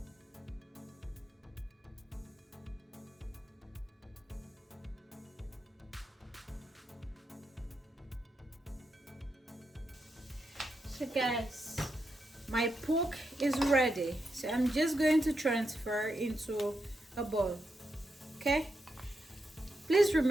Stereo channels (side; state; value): both; normal; correlation 0.84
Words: So guys, my pork is ready, so I'm just going to transfer into a bowl, okay. Please